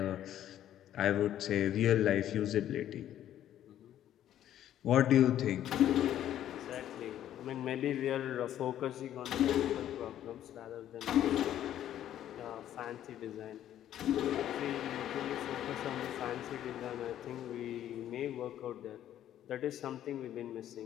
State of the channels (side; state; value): right; quieter; 11.5 dB